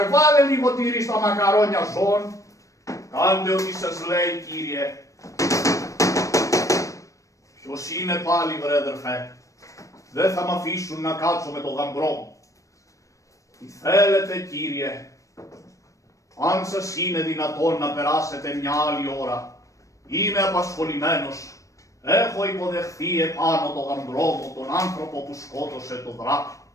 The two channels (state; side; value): late; right; 0.16 ms